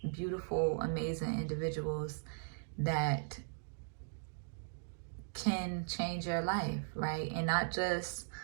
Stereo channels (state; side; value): silent; left; digital silence